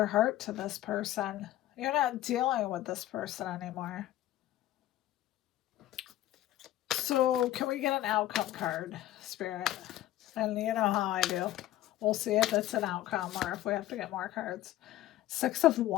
heart to this person. You're not dealing with this person anymore. So can we get an outcome card, Spirit? And you know how I do. We'll see if it's an outcome or if we have to get more cards. Six of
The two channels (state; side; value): quieter; right; 14.1 dB